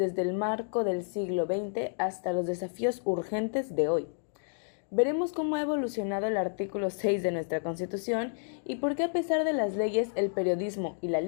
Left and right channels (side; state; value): right; silent; digital silence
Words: el marco del siglo XX hasta los desafíos urgentes de hoy. Veremos cómo ha evolucionado el artículo 6 de nuestra Constitución y por qué a pesar de las leyes el periodismo y la